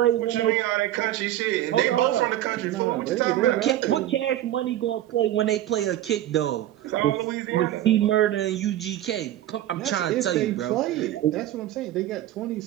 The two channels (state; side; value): quieter; left; 13.2 dB